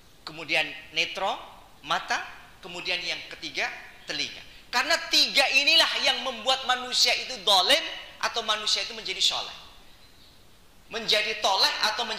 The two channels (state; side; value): identical; both; correlation 1.00